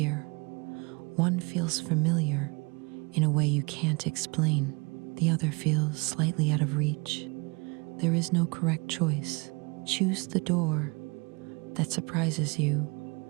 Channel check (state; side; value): quieter; left; 29.0 dB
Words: One feels familiar in a way you can't explain. The other feels slightly out of reach. There is no correct choice. Choose the door that surprises you